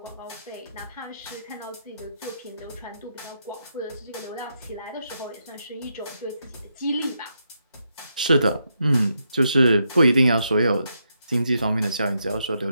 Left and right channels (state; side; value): inverted; both; correlation -0.82